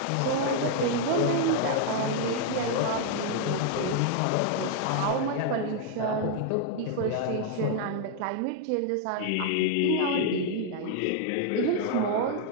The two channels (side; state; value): both; different; correlation 0.00